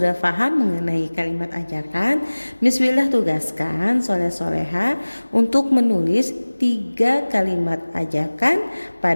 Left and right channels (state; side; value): inverted; both; correlation -1.00